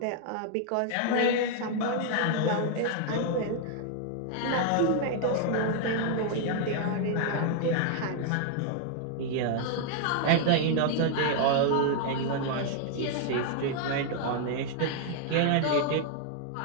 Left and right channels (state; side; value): different; both; correlation 0.00